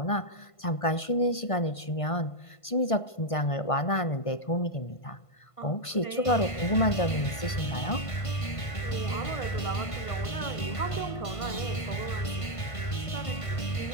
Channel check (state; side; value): late; right; 1.5 ms